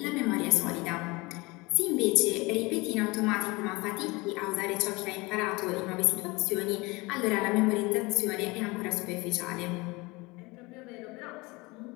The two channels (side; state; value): right; quieter; 24.2 dB